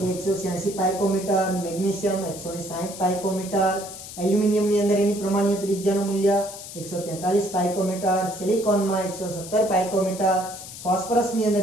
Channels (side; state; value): left; noise; hiss, 12 dB below the sound